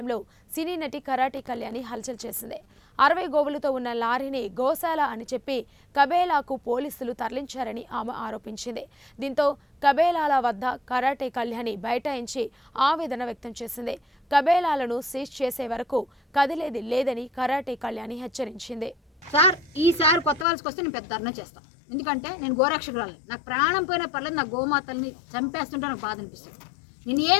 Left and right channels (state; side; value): drops out; right; at 20.5 s